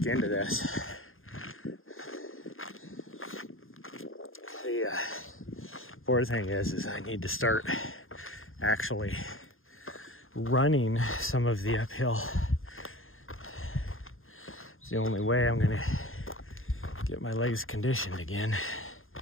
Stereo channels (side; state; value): right; late; 0.60 ms